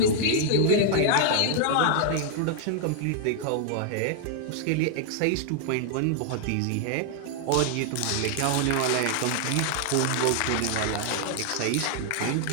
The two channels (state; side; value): different; both; correlation 0.00